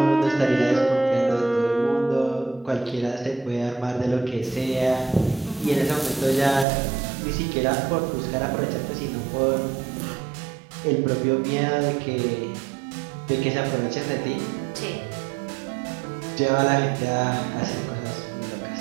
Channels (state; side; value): drops out; left; at 6.7 s